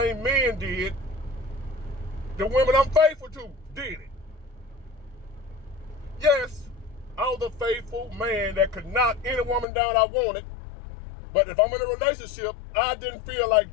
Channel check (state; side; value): drops out; right; at 9.7 s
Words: men did, the women I'm faithful to did it. Yes, I was a faithful man that could knock any woman down I wanted. But if I'm in a relationship, I didn't feel